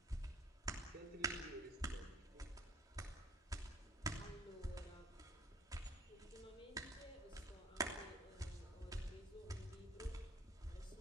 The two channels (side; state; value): both; normal; correlation 0.54